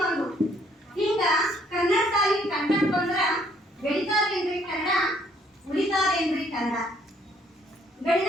ಹಿಂಗ ಕನ್ನಡ ಸಾಲಿ ಕಂಟೆಂಟ್ ಬಂದ್ರ ಬೆಳಿತಾದೇನ್ರಿ ಕನ್ನಡ, ಉಳಿತಾದೇನ್ರಿ ಕನ್ನಡ.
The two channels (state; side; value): normal; both; correlation 0.65